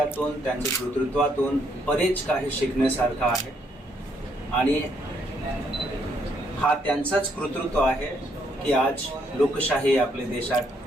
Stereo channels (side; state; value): both; normal; correlation 0.72